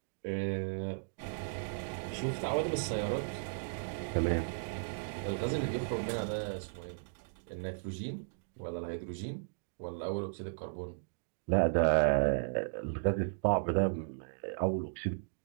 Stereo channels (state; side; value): silent; left; digital silence